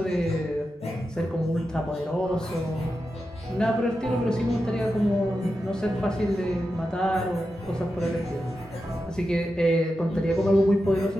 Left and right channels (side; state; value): both; normal; correlation 0.90